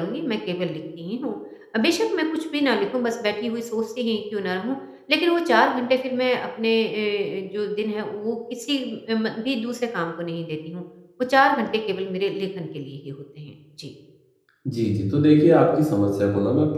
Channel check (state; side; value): identical; both; correlation 1.00